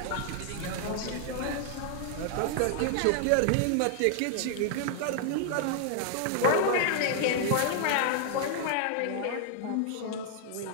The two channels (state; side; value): different; both; correlation 0.00